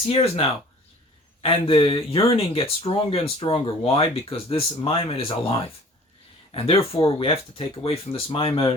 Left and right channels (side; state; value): both; normal; correlation 0.49